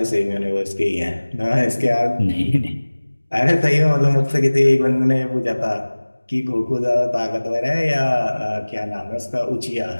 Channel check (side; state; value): both; inverted; correlation -1.00